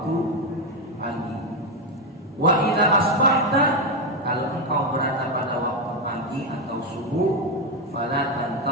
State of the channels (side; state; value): both; normal; correlation 0.07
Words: pagi. Wa idza asbahta, kalau engkau berada pada waktu pagi atau subuh, fala